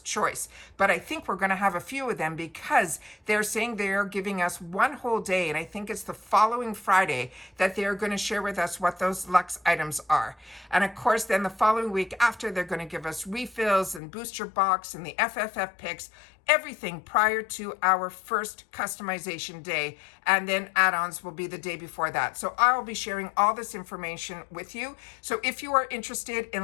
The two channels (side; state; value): right; drops out; at 14.0 s